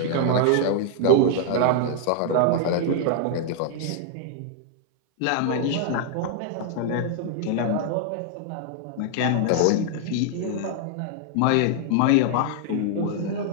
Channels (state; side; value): different; both; correlation 0.00